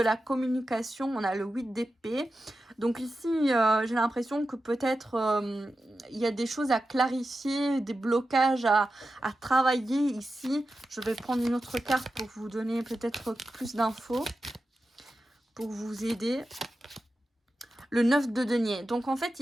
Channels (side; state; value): both; normal; correlation 0.92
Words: communication, on a le 8 d'épée. Donc ici, j'ai l'impression que peut-être il y a des choses à clarifier, des blocages à travailler ici. Je vais prendre une autre carte pour vous donner peut-être plus d'infos, pour vous aider. Le 9 de denier. Donc en fait